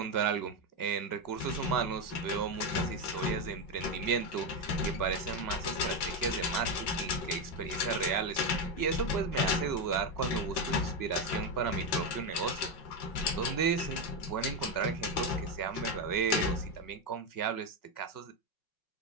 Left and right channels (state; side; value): late; right; 5.4 ms